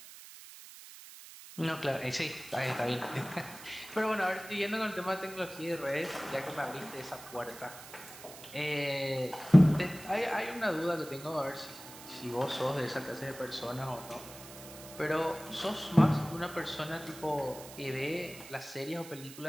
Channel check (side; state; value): right; noise; hiss, 16 dB below the sound